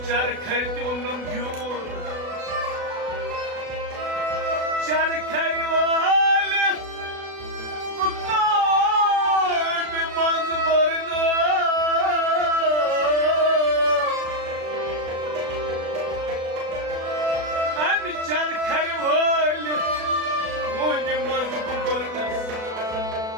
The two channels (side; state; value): left; late; 36 ms